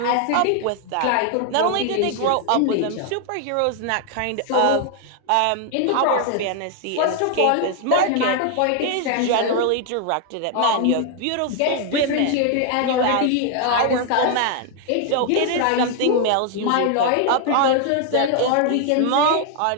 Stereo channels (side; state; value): both; different; correlation 0.00